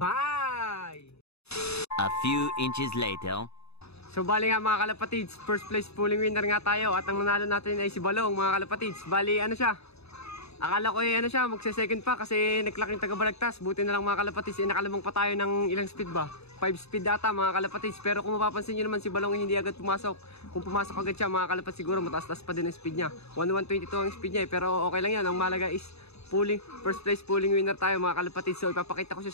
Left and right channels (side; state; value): right; late; 0.79 ms